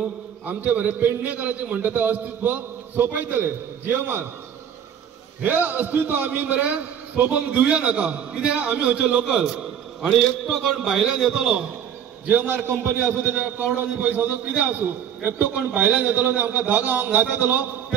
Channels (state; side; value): quieter; left; 8.9 dB